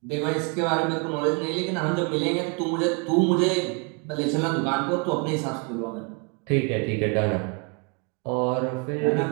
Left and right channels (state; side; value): quieter; left; 35.1 dB